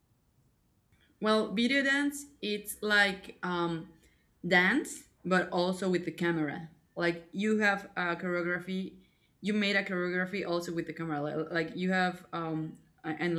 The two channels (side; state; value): both; identical; correlation 1.00